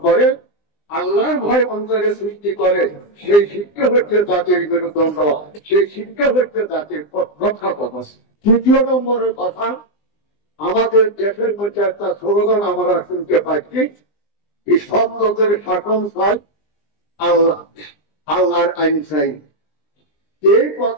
করে, আল্লাহর ভয় অন্তরে সৃষ্টি করে, সেই শিক্ষা হচ্ছে জাতির মেরুদণ্ড, সেই শিক্ষা হচ্ছে জাতির রক্ষা কবচ। তৃতীয় নম্বরের কথা, আমাদের দেশের মধ্যে একটা স্লোগান আমরা শুনতে পাচ্ছি, সব লোকের শাসন চাই, আল্লাহ আল্লাহর আইন চাই। এই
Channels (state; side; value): late; right; 20 ms